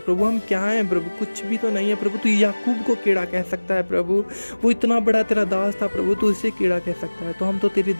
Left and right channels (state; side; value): inverted; both; correlation -1.00